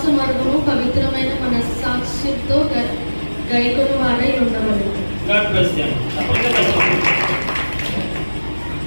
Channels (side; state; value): both; inverted; correlation -1.00